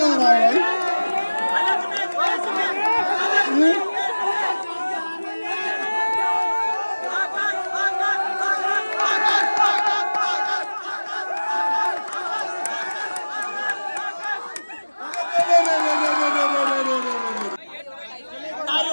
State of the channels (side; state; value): both; inverted; correlation -1.00